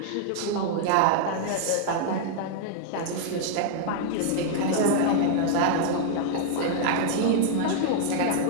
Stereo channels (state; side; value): different; both; correlation -0.01